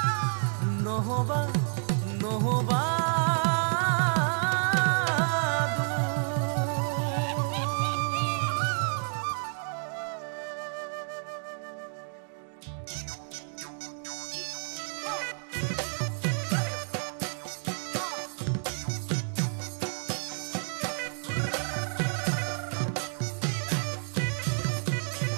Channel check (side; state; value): left; silent; 58 dB below the other